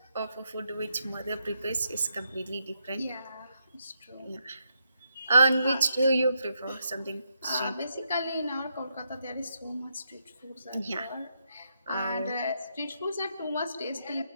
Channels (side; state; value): both; inverted; correlation -0.80